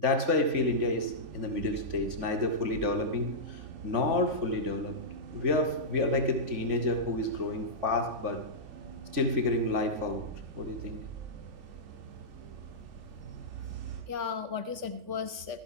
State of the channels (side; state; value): left; late; 3.5 ms